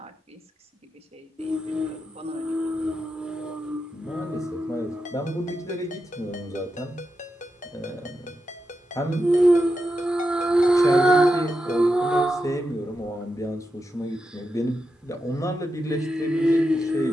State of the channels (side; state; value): both; normal; correlation 0.87